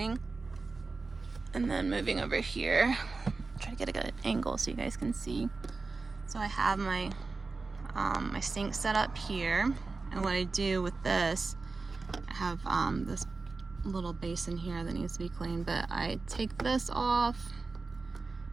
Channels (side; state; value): left; quieter; 3.9 dB